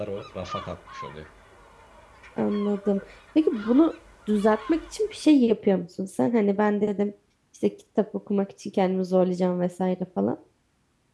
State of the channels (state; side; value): identical; both; correlation 1.00